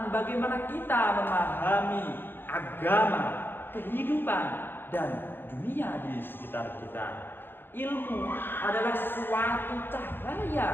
bagaimana kita memahami agama, kehidupan, dan dunia di sekitar kita. Ilmu adalah suatu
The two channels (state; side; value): late; right; 0.10 ms